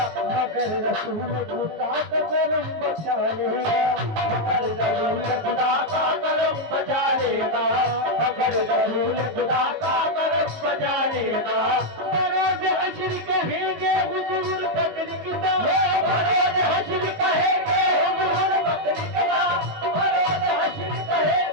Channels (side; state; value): left; late; 19 ms